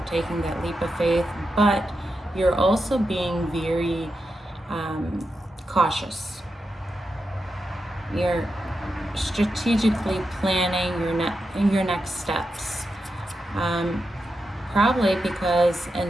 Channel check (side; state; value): both; normal; correlation 0.88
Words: taking that leap of faith, but you're also being very cautious. You're strategically planning your next steps. Probably because in